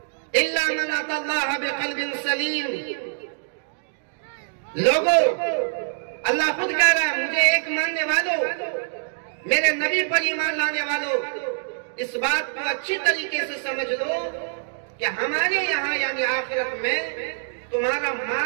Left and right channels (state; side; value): silent; left; digital silence